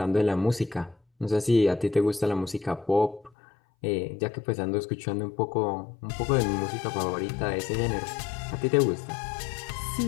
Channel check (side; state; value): right; drops out; at 3.3 s